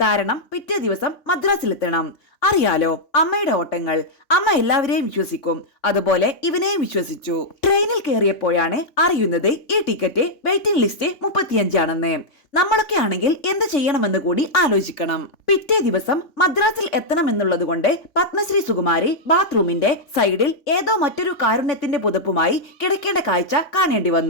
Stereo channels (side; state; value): right; late; 3.5 ms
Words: കാരണം പിറ്റേ ദിവസം മദ്രാസിലെത്തണം. അറിയാലോ അമ്മയുടെ ഓട്ടങ്ങൾ. അമ്മ എല്ലാവരെയും വിശ്വസിക്കും. അതുപോലെ ഇവനെയും വിശ്വസിച്ചു. ട്രെയിനിൽ കയറിയപ്പോഴാണ് അറിയുന്നത് ഈ ടിക്കറ്റ് വെയിറ്റിംഗ് ലിസ്റ്റ് 35 ആണെന്ന്. നമ്മളൊക്കെ ആണെങ്കിൽ എന്ത് ചെയ്യണമെന്ന് കൂടി ആലോചിക്കണം. പിറ്റേ ദിവസം മദ്രാസിൽ എത്തണമെന്നുള്ളത് കൊണ്ട് പത്മശ്രീ സുകുമാരി ബാത്റൂമിന്റെ സൈഡിൽ ഏതോ മറ്റൊരു കാരുണ്യത്തിന്റെ പുതപ്പുമായി കിടക്കേണ്ട കാഴ്ച കാണേണ്ടി